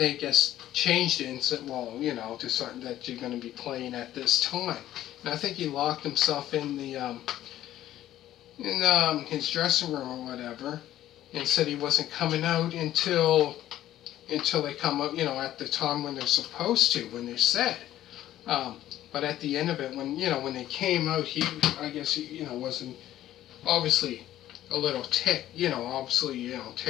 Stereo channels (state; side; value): quieter; right; 13.1 dB